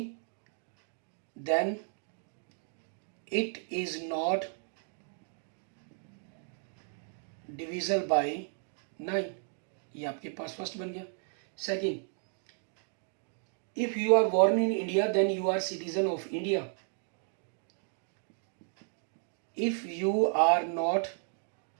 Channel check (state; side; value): silent; left; 55 dB below the other